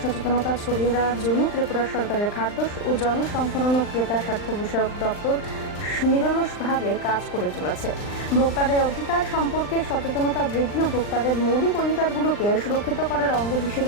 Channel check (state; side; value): late; right; 39 ms